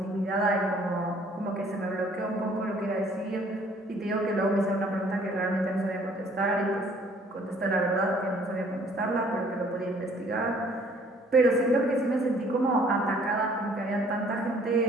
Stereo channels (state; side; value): normal; both; correlation 0.58